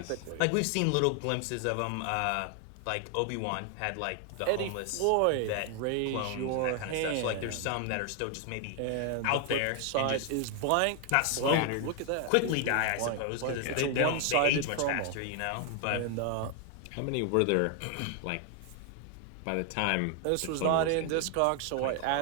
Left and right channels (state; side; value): different; both; correlation 0.00